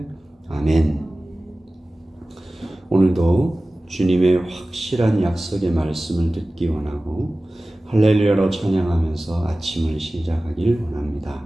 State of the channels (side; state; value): both; normal; correlation 0.97